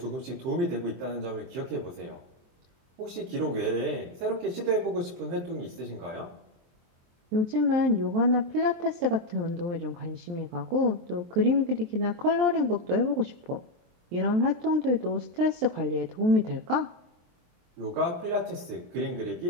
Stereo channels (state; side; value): late; left; 23 ms